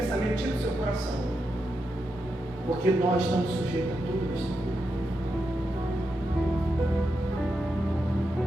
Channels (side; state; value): both; normal; correlation 0.86